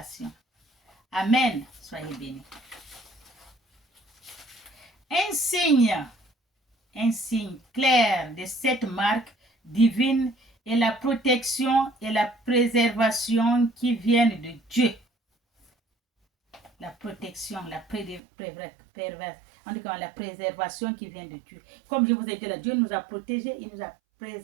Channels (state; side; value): drops out; left; at 18.2 s